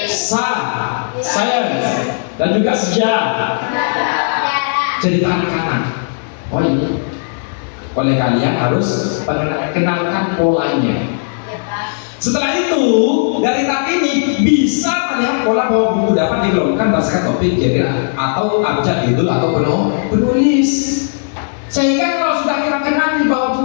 science dan juga sejarah. Cerita anak-anak. Oh ini oleh kalian harus kenalkan polanya. Setelah itu dari tab ini bisa melihat pola bahwa buku dapat dikelompokkan berdasarkan topik, genre atau abjad judul atau penulis. Sehingga kalau sudah kita kenali bahwa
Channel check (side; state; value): right; silent; digital silence